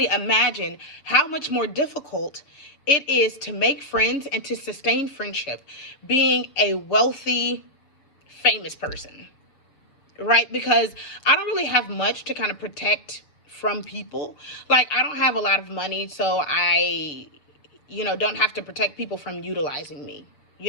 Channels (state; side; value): late; right; 6.8 ms